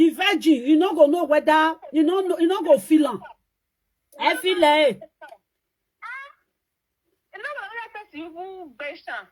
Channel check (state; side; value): identical; both; correlation 1.00